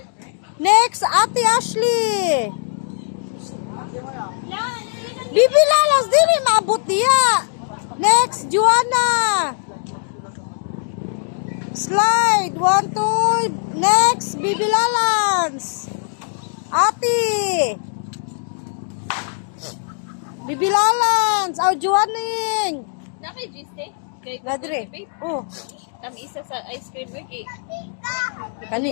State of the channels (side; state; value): right; silent; digital silence